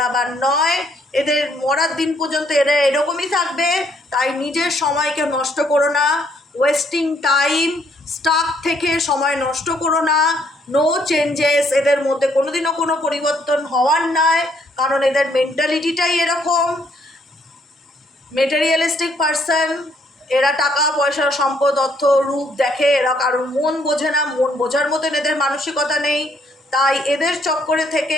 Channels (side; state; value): both; normal; correlation 0.69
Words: নয়, এদের মরার দিন পর্যন্ত এরা এরকমই থাকবে। তাই নিজের সময়কে নষ্ট করো না, ওয়েস্টিং টাইম, স্টাক থেকে সময় নষ্ট করো না। নো চেঞ্জেস, এদের মধ্যে কোনোদিনও কোনো পরিবর্তন হওয়ার নয়, কারণ এদের মেন্টালিটিটাই এরকম, মেটেরিয়ালিস্টিক পার্সন। এরা টাকা পয়সা, সম্পদ, অর্থ, রূপ দেখে, এরা কারোর মন বোঝে না, মন বোঝার মতন এদের মানসিকতা নেই। তাই এদের চক্করে